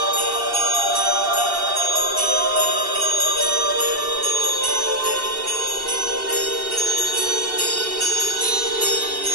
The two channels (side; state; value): left; late; 2.7 ms